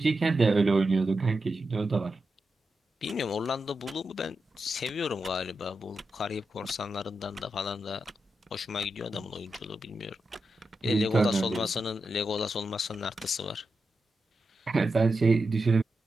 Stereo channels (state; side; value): normal; both; correlation 0.88